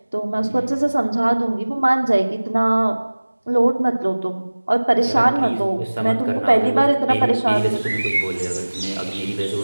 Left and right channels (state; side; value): inverted; both; correlation -1.00